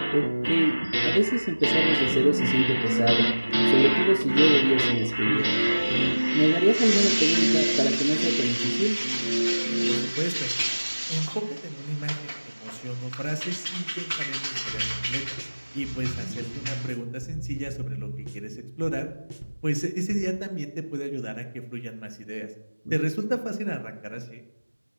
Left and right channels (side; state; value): both; inverted; correlation -1.00